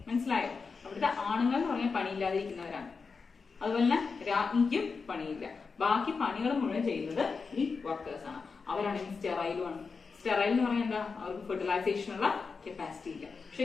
മനസ്സിലായോ? അവിടുത്തെ ആണുങ്ങൾ എന്ന് പറഞ്ഞാൽ പണിയില്ലാതിരിക്കുന്നവരാണ്. അതുപോലെ തന്നെ രാജ്ഞിക്കും പണിയില്ല. ബാക്കി പണികൾ മുഴുവൻ ചെയ്യുന്നത് ഈ വർക്കേഴ്സ് ആണ്. അവരാണെങ്കിൽ സ്റ്റെറൈലുമാണ്. സ്റ്റെറൈൽ എന്ന് പറഞ്ഞാൽ എന്താ? അവർക്ക് ഫെർട്ടിലൈസേഷനുള്ള കപ്പാസിറ്റി ഇല്ല.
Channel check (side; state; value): right; quieter; 4.9 dB